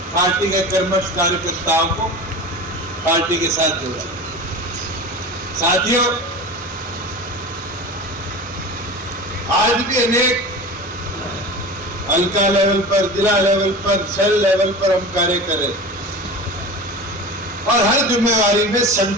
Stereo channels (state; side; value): normal; both; correlation 0.32